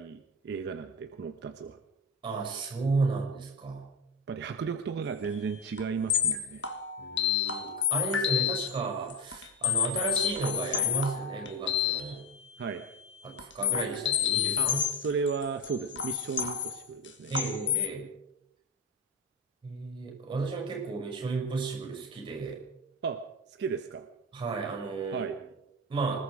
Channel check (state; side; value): normal; both; correlation 0.18